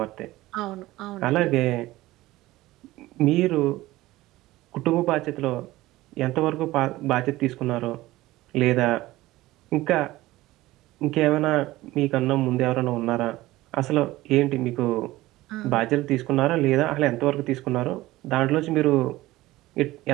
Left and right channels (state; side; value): quieter; left; 17.7 dB